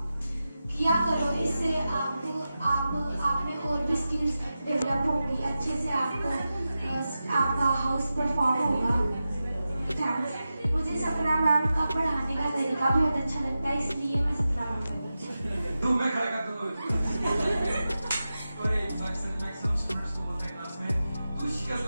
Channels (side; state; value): both; inverted; correlation -0.93